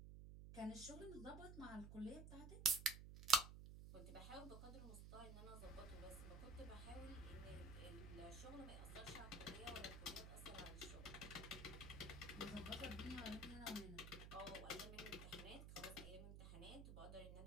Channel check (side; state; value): right; noise; hum, 9 dB below the sound